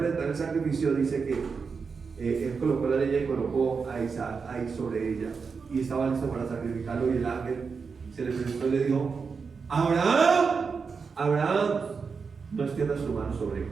el sacrificio, dice que él colocó la leña y colocó a Isaac ahí sobre ella, y estaba listo para sacrificarlo. Y el ángel se le presentó y le dijo: Abraham. Abraham, no extiendas tu mano sobre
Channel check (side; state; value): left; quieter; 5.3 dB